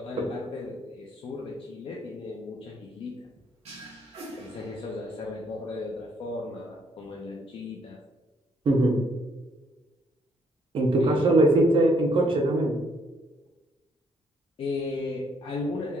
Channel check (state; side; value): normal; both; correlation 0.68